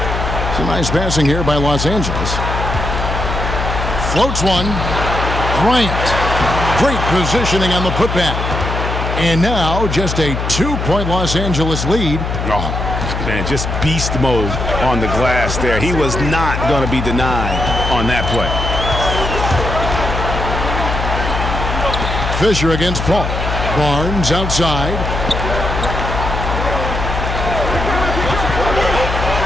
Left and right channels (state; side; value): noise; left; hum, 3 dB below the sound